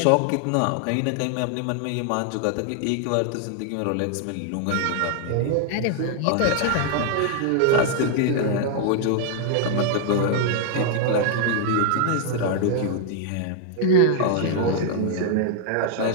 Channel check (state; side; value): different; both; correlation 0.00